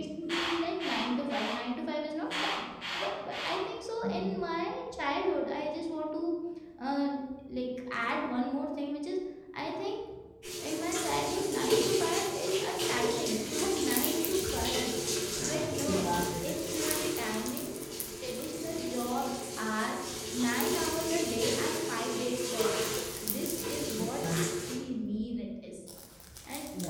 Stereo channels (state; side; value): identical; both; correlation 1.00